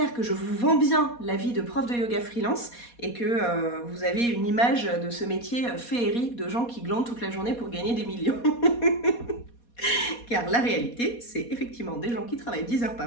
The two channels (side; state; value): right; late; 4.2 ms